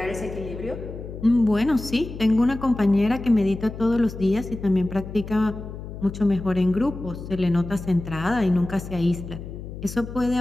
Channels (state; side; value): noise; left; hum, 10 dB below the sound